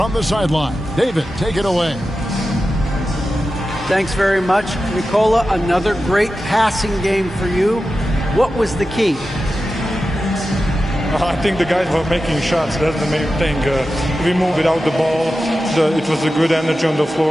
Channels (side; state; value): both; normal; correlation 0.92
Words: the sideline. David, take it away. Thanks very much. Nikola, another great passing game for you. What was the key? I think the guys were making shots. That's the main thing. We moved without the ball. It was a good energy on the